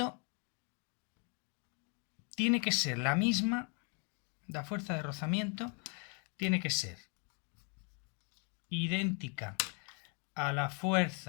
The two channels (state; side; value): quieter; right; 37.7 dB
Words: tiene que ser la misma. La fuerza de rozamiento tiene que ser idéntica a la